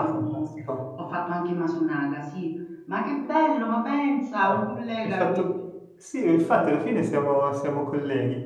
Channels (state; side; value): identical; both; correlation 1.00